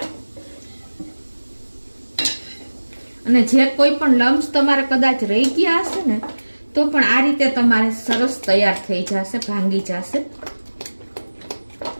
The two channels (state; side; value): inverted; both; correlation -1.00